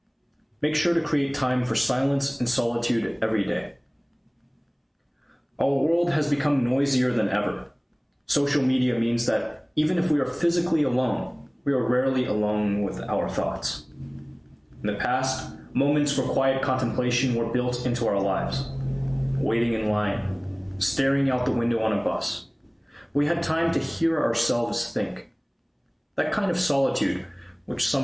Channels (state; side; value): identical; both; correlation 1.00